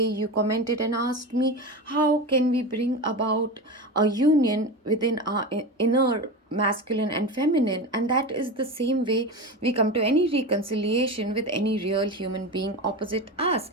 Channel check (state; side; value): normal; both; correlation 0.24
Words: you commented and asked me, how can we bring about a union within our inner masculine and feminine? And that is the same way we come to any reconciliation with any real human being opposite us.